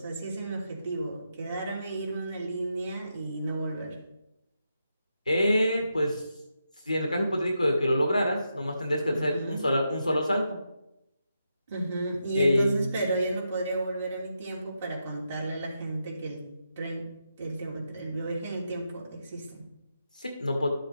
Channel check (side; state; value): both; inverted; correlation -0.84